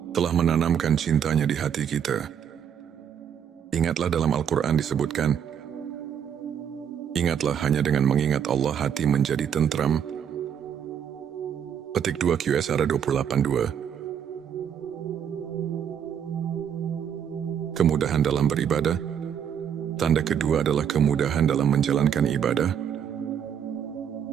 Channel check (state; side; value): quieter; left; 8.5 dB